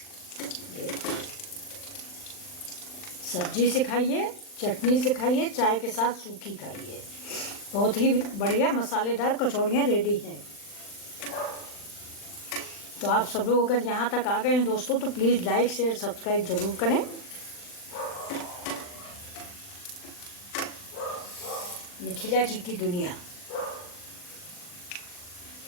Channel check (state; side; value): late; right; 40 ms